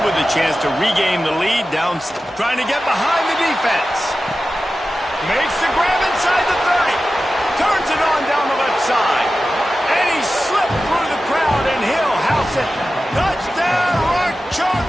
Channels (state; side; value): normal; both; correlation 0.94